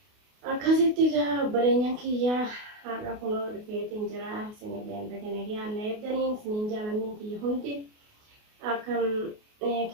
akkasitti obboleenyaan kiyyaa har'a kunoo dhufeetiin jira isinillee dhagana yaanna eeddaniin isiniin jaalanniin kiyya hundi akkam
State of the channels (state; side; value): late; left; 28 ms